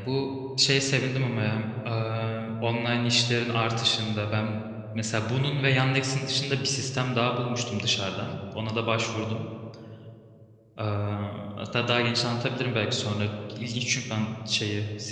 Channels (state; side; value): identical; both; correlation 1.00